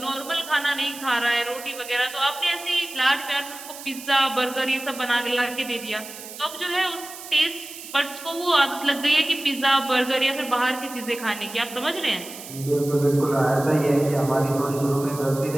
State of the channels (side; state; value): right; noise; hiss, 13 dB below the sound